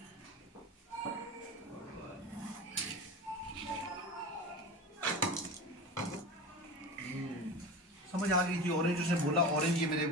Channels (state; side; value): normal; both; correlation 0.29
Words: समझ आ गई थी, ऑरेंज उसने बोला, ऑरेंज ये मेरे